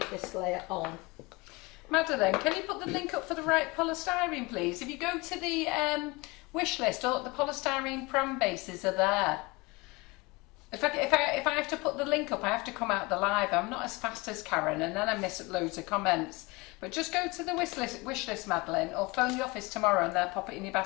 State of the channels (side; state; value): right; quieter; 24.8 dB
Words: this layer on. Madeline, can you put the link up for the right polystyrene, please? If you go to the wish list, all the polystyrene pram bases are there. If I have to put the link up, I have to come out the live. I'm not as fast as Karen, and then I miss loads of comments. But just go to the wish list, Madeline, or phone the office tomorrow and they'll pop it in your